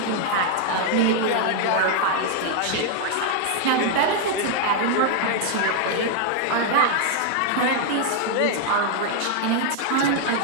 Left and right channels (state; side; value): different; both; correlation 0.00